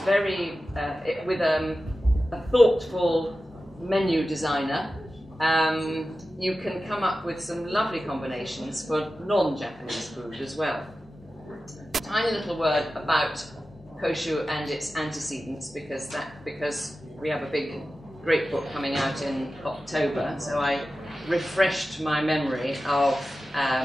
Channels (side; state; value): both; normal; correlation 0.94